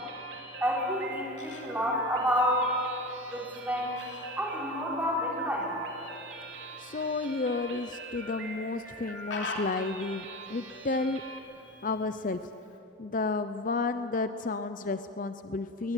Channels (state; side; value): normal; both; correlation 0.27